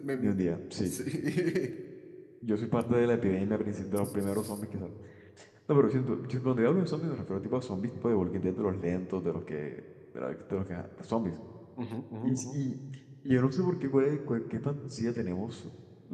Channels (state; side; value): identical; both; correlation 1.00